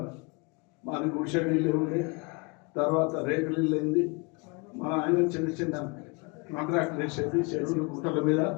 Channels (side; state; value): right; quieter; 30.2 dB